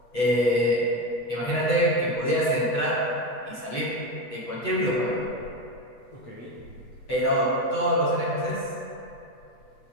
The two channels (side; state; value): right; late; 8.1 ms